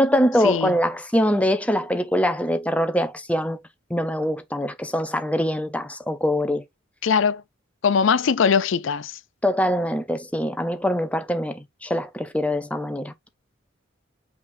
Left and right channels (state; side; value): normal; both; correlation 0.57